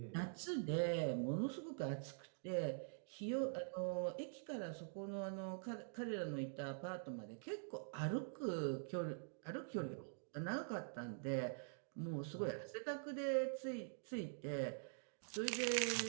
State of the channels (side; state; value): left; silent; digital silence